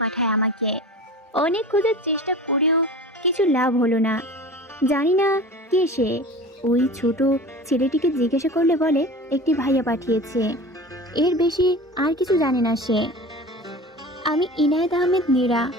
পাঠায় আমাকে। অনেক খোঁজার চেষ্টা করেও কিছু লাভ হলো না। জানি না কে সে। ওই ছোট ছেলেটিকে জিজ্ঞাসা করলে বলে একটি ভাইয়া পাঠিয়েছে, এর বেশি আর কিছু জানে না সে। আমি ইনায়েত আহমেদ নীরা,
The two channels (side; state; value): both; normal; correlation 0.35